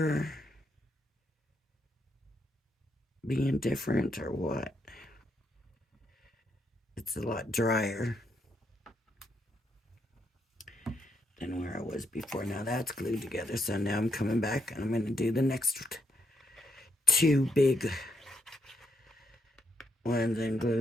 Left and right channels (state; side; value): normal; both; correlation 0.79